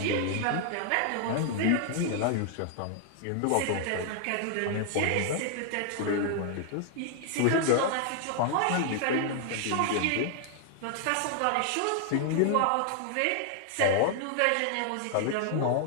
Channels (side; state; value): both; different; correlation 0.00